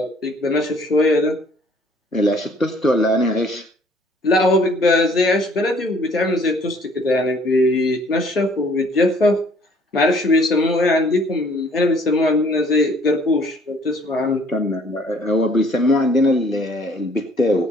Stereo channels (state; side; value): normal; both; correlation 0.58